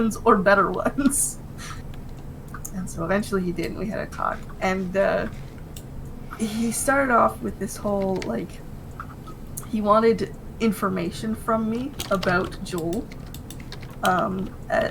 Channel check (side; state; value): both; identical; correlation 1.00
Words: or better ones. And so eventually he did, and we had a talk. And he started off with this whole, like, he wanted information from me about Joel,